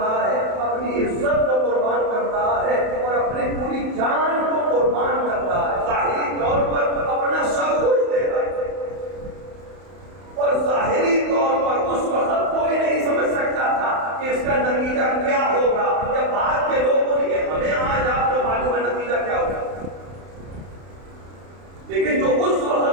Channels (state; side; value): late; left; 31 ms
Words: ہے، اپنی عزت کو قربان کر رہا ہے اور اپنے پوری